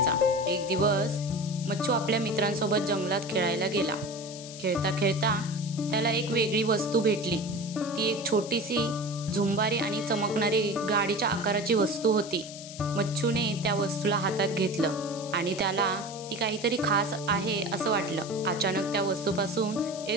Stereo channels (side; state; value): left; noise; hiss, 13 dB below the sound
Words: एक दिवस मच्छू आपल्या मित्रांसोबत जंगलात खेळायला गेला। खेळता खेळता त्याला एक वेगळी वस्तू भेटली। ती एक छोटीशी झुंबारी आणि चमकणारी गाडीच्या आकाराची वस्तू होती। मच्छूने त्या वस्तूला हातात घेतलं आणि त्याला ती काहीतरी खास आहे असं वाटलं। अचानक त्या वस्तूपासून